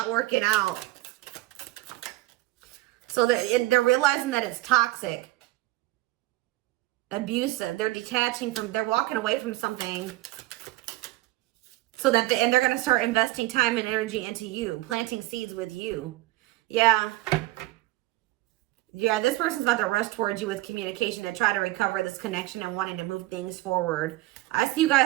working out. So they're realizing that it's toxic, abusive. They're detaching from, they're walking away from something. So that, and they're going to start investing time and energy into you, planting seeds with you. Yeah. Yeah, this person's about to rush towards you with communication and try to recover this connection and wanting to move things forward. I see you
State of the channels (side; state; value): left; quieter; 18.7 dB